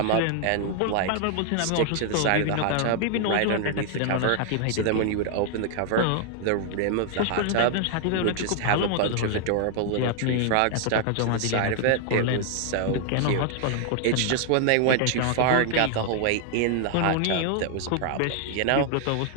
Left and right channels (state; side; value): different; both; correlation 0.00